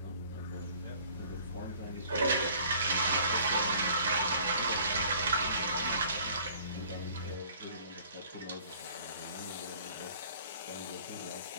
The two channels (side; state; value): both; inverted; correlation -0.53